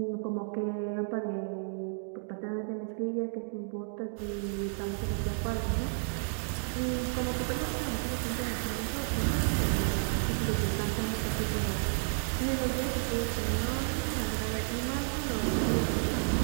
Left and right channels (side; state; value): left; silent; digital silence